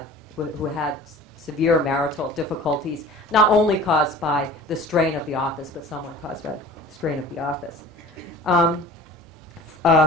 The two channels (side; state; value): both; normal; correlation 0.42